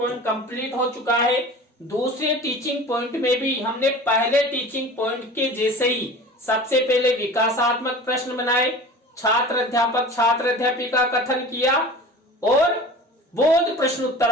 कंप्लीट हो चुका है। दूसरे टीचिंग पॉइंट में भी हमने पहले टीचिंग पॉइंट के जैसे ही सबसे पहले विकासात्मक प्रश्न बनाए, छात्र अध्यापक छात्र अध्यापिका कथन किया और बोध प्रश्न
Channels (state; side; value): normal; both; correlation 0.39